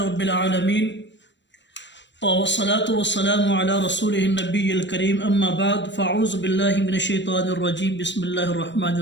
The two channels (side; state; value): right; late; 0.53 ms